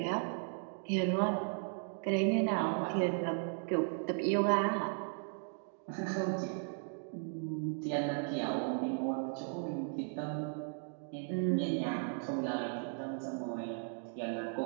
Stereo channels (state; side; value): silent; left; 54 dB below the other